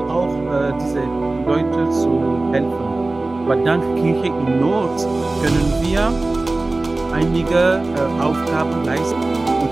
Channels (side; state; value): left; quieter; 3.1 dB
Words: auch, diese Leute zu helfen. Aber dank Kirche in Not können wir einige Aufgaben leisten. Und